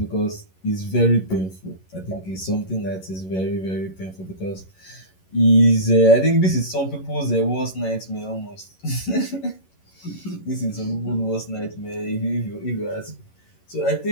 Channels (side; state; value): right; late; 11 ms